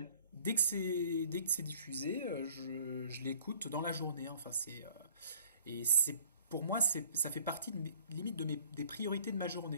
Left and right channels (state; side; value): inverted; both; correlation -0.56